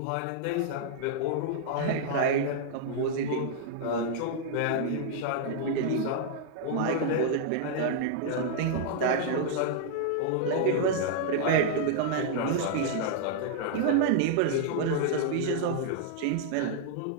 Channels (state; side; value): different; both; correlation -0.01